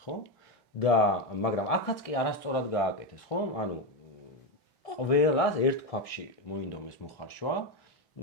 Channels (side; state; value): both; normal; correlation 0.10